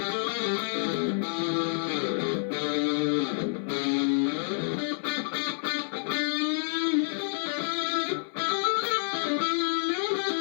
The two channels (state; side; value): silent; right; digital silence